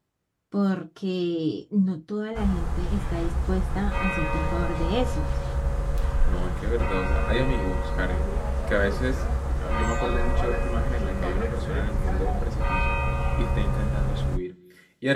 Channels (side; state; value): both; identical; correlation 1.00